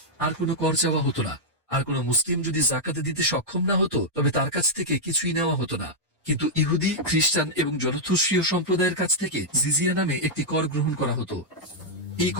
আর কোনো কর চাওয়া হতো না। আর কোনো মুসলিম যদি যাকাত দিতে সক্ষম না হতো, তবে তার কাছ থেকে কিছুই নেওয়া হতো না। কিন্তু ইহুদি, খ্রিস্টান এবং জরথুস্ট্রীয় সম্প্রদায়ের কাছ থেকে জিজিয়া নামে একটি কর গ্রহণ করা হতো। এই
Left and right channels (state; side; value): normal; both; correlation -0.05